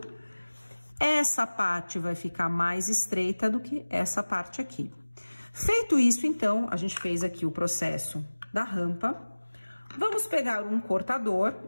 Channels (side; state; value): both; inverted; correlation -1.00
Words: Essa parte vai ficar mais estreita do que essa parte aqui. Feito isso, então, a gente fez aqui o processo da rampa. Vamos pegar um